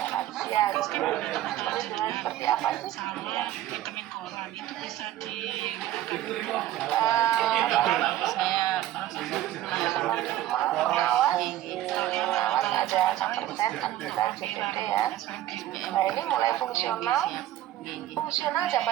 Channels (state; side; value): quieter; left; 13.6 dB